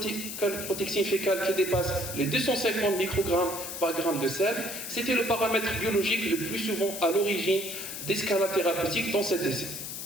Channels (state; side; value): noise; left; hiss, 7 dB below the sound